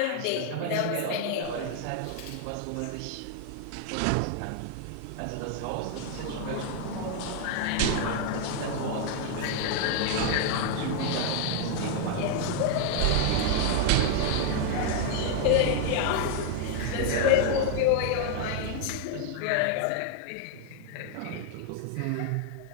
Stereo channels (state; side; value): different; both; correlation 0.00